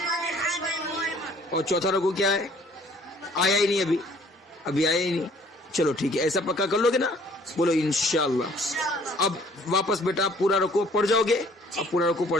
اور چوتھا رکوع کیا ہے؟ آیا ہی نہیں ابھی آیا ہی نہیں. چلو ٹھیک ہے، ایسا پکا کر لو گے نا؟ بولو انشاءاللہ. اب واپس بیٹا پورا رکوع پڑھ جاؤ گے. اب پورا رکوع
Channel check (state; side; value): normal; both; correlation 0.57